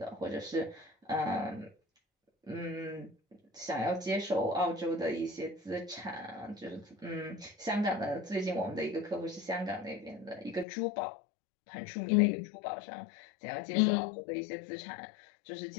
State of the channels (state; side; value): drops out; right; at 10.7 s